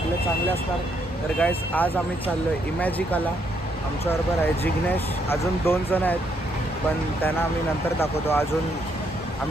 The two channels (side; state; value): both; normal; correlation 0.74